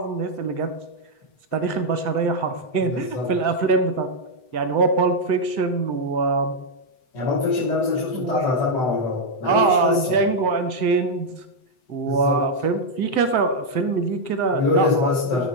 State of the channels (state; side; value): late; right; 7.9 ms